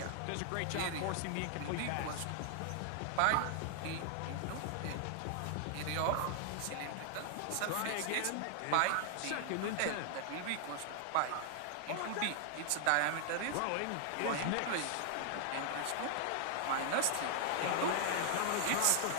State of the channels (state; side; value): different; both; correlation 0.00